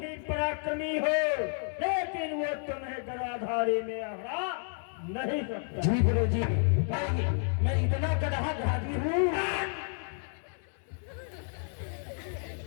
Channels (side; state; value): right; silent; 57 dB below the other